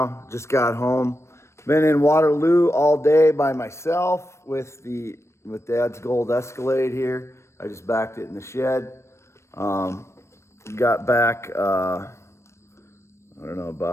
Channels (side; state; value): right; late; 0.13 ms